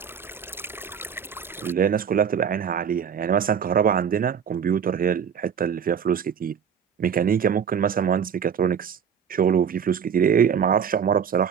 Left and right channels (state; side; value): quieter; left; 7.5 dB